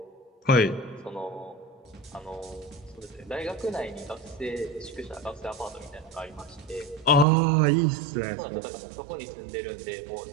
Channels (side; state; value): left; drops out; at 7.2 s